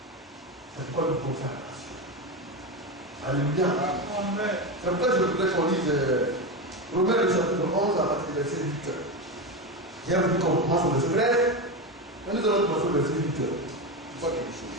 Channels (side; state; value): both; normal; correlation 0.16